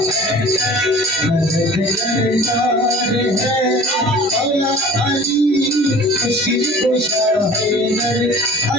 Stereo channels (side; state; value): both; normal; correlation 0.44